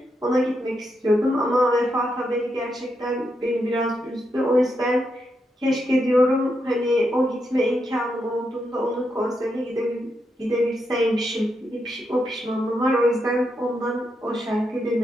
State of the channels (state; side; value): normal; both; correlation 0.83